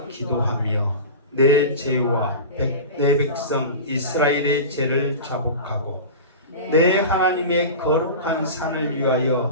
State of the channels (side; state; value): both; inverted; correlation -0.30